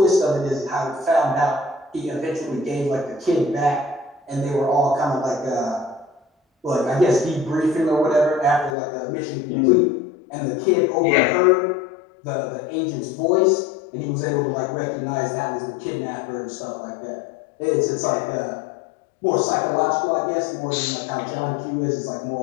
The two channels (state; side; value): drops out; right; at 8.8 s